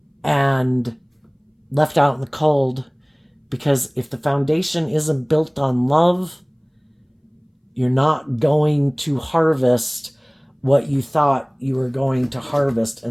and left out in the cold. Because if the foundation isn't built on love, you're not going to harvest what you thought you were going to harvest.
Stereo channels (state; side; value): identical; both; correlation 1.00